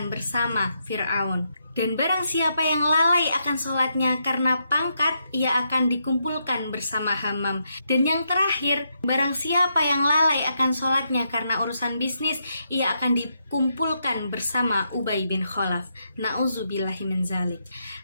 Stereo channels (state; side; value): inverted; both; correlation -0.80